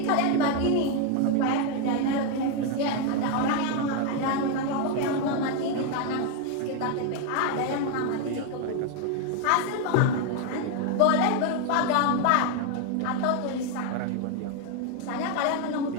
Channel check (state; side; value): different; both; correlation 0.01